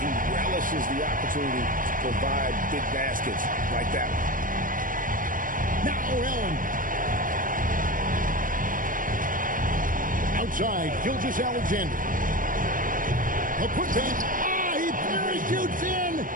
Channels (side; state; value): left; late; 0.40 ms